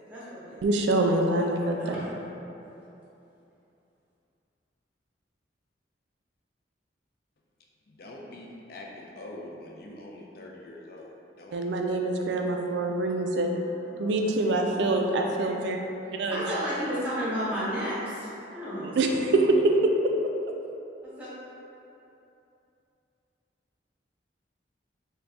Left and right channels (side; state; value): both; normal; correlation 0.29